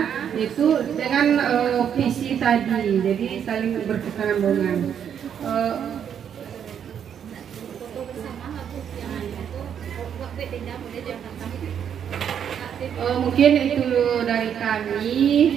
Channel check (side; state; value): left; quieter; 8.5 dB